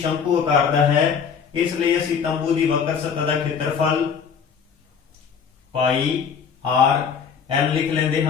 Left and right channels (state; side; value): quieter; right; 6.6 dB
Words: ਆਕਾਰ ਦਾ ਹੈ ਇਸ ਲਈ ਅਸੀਂ ਤੰਬੂ ਦੀ ਵਕਰ ਸਤਹ ਦਾ ਖੇਤਰਫਲ ਪਾਈ r l ਲਿਖ ਲੈਂਦੇ